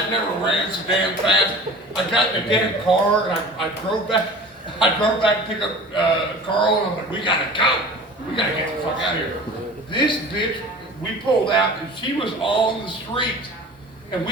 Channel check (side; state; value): both; normal; correlation 0.40